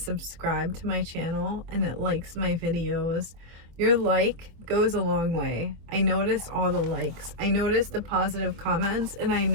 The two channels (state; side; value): late; left; 25 ms